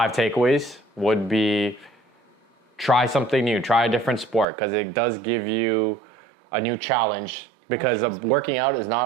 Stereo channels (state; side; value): drops out; left; at 4.5 s